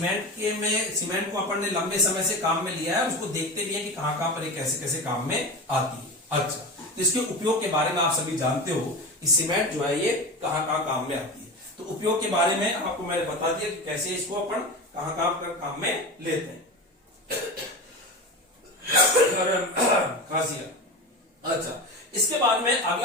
को अपन ने लंबे समय से काम में लिया है, उसको देखते भी है कि कहां पर ये कैसे कैसे काम में आती है। अच्छा, तो इसके उपयोग के बारे में आप सभी जानते हो कि सीमेंट जो है ये कहां काम में आती है। तो उपयोग के बारे में आपको मैंने बता दिया कि कैसे इसको अपन कहां काम में लेते हैं। अच्छा, इसके बाद में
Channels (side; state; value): both; normal; correlation 0.25